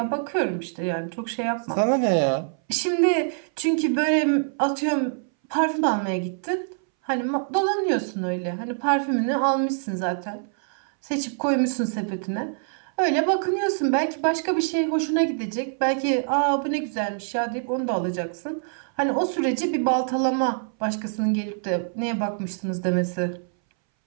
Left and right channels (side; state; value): left; silent; 62 dB below the other